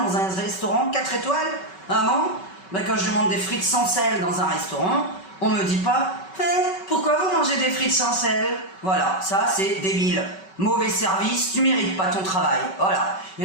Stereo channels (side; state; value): right; late; 5.3 ms